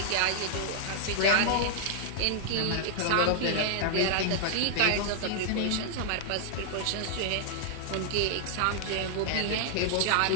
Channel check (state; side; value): different; both; correlation -0.01